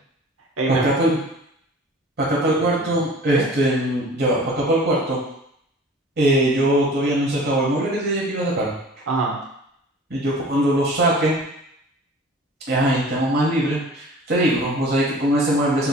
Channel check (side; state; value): both; normal; correlation 0.45